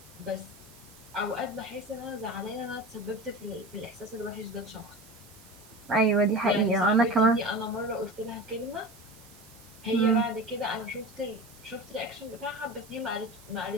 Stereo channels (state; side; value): noise; right; hiss, 22 dB below the sound